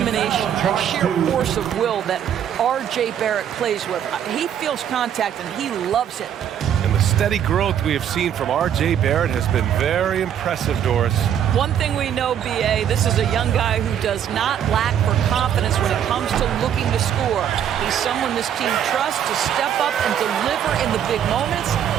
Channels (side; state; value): left; quieter; 9.4 dB